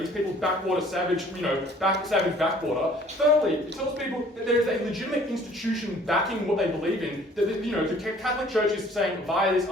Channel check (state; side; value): normal; both; correlation 0.55